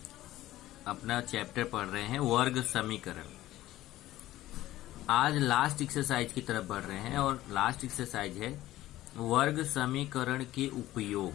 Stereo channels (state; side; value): quieter; right; 15.3 dB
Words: अपना चैप्टर पढ़ रहे हैं वर्ग समीकरण। आज लास्ट एक्सरसाइज की तरफ बढ़ रहे हैं और लास्ट एक्सरसाइज है वर्ग समीकरण के